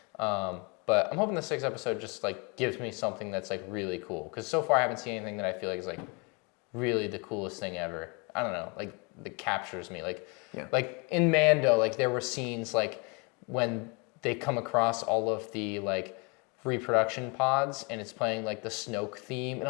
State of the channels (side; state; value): right; quieter; 31.2 dB